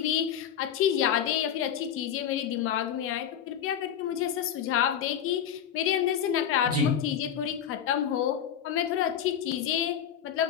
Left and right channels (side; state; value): right; quieter; 9.1 dB